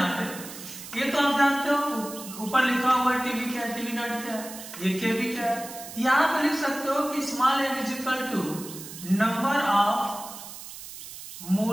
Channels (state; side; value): noise; right; hiss, 13 dB below the sound